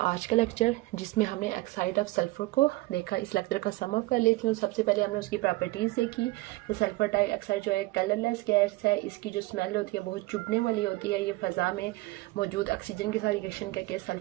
का लेक्चर जिसमें हमने ऑक्साइड ऑफ सल्फ़र को देखा। इस लेक्चर का सम अप कर लेती हूँ। सबसे पहले हमने उसकी प्रॉपर्टीज़ देखी कि सल्फ़र डाइऑक्साइड जो है कलरलेस गैस है, इसकी जो स्मेल होती है बहुत चुभने वाली होती है। ये फ़ज़ा में मौजूद ऑक्सीजन के साथ रिएक्शन करके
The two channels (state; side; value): quieter; left; 20.8 dB